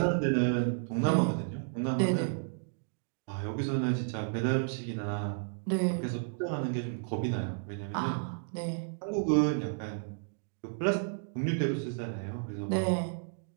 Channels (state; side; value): silent; left; digital silence